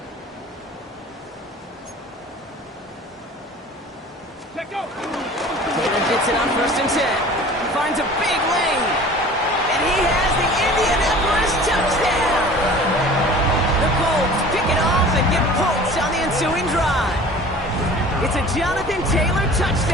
Let go. Taylor gets it on first and 10. Finds a big lane. And he has the Indianapolis touchdown. The Colts pick it off and get points on the ensuing drive. It's a Jonathan Taylor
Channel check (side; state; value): both; normal; correlation 0.43